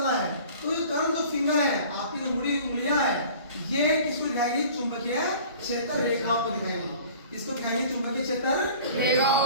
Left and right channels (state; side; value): inverted; both; correlation -0.46